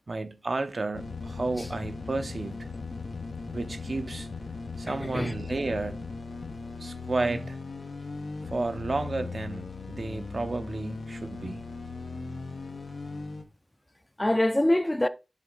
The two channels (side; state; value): both; normal; correlation 0.95